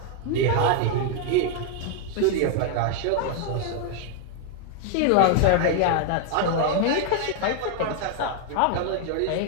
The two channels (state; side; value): different; both; correlation 0.00